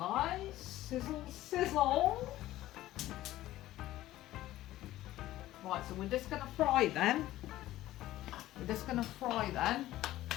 Sizzle, sizzle. Right, so we're just going to fry them. We're just going to fry them.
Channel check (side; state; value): right; quieter; 15.2 dB